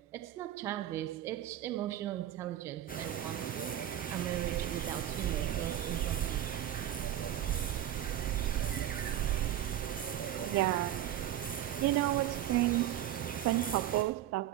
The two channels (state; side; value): quieter; left; 12.0 dB